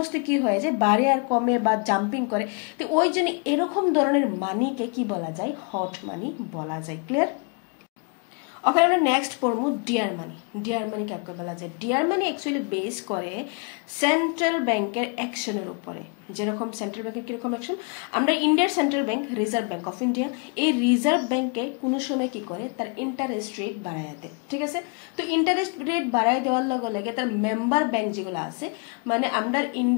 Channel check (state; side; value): quieter; right; 34.7 dB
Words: কি হয়ে যায় বাড়ে আর কমে বা জাম্পিং করে তো ওই জন্য এরকম ধরনের মানিকে কি বলা যায় হট মানি বলা যায় ক্লিয়ার ওখানে আমরা নেক্সট পড়বো ডিয়ার মানি কাকে বলা যায় ডিয়ার মানি অ্যাকচুয়ালি বেস করে সেন্ট্রাল ব্যাংকের অ্যাকশনের উপরে যেরকম সেন্ট্রাল ব্যাংকের কিরকম অ্যাকশন আমরা ইন্ডিয়ার central bank reserve bank of India এই রিজার্ভ ব্যাংকে কোনো সময় কি করে তার ইন্টারেস্ট রেট বাড়ায় দেয় ঠিক আছে তো ইন্টারেস্ট রেট বাড়ায় দেওয়ার লগে লগে তার মেম্বার ব্যাংক যেগুলো আছে মানে আমরা